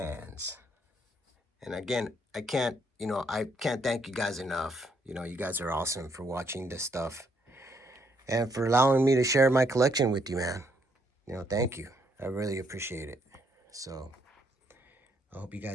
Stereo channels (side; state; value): both; normal; correlation 0.72